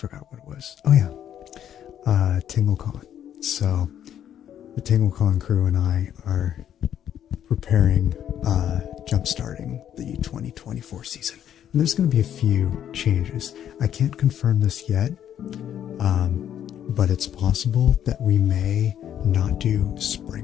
what it was. Oh yeah, TingleCon. So the TingleCon crew and I are preparing, jump-starting the 2024 season. And there's going to be a few changes. I can't confirm this yet, but it's possible that we may not do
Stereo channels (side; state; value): right; quieter; 10.1 dB